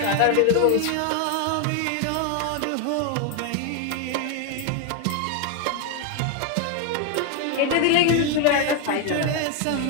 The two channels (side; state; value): both; different; correlation 0.01